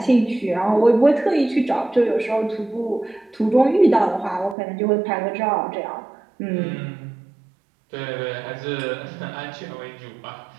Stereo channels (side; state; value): left; drops out; at 4.5 s